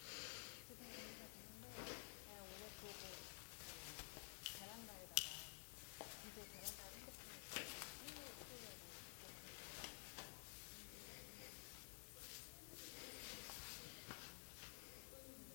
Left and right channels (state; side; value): silent; right; digital silence